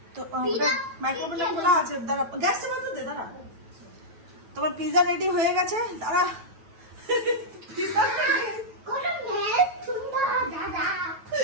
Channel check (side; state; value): left; late; 9.2 ms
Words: তো মাইক্রোওভেনটা খোলা আছে, দাঁড়া গ্যাসটা বন্ধ দে, দাঁড়া। তোমার পিজা রেডি হয়ে গেছে, দাঁড়া।